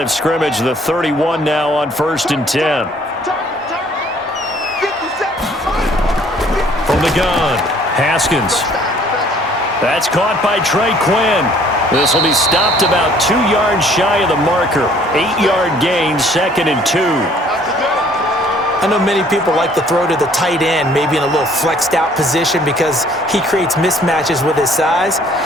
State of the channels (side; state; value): both; normal; correlation 0.58